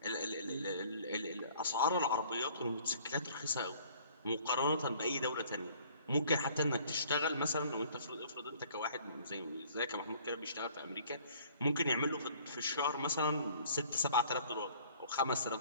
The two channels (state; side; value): inverted; both; correlation -0.55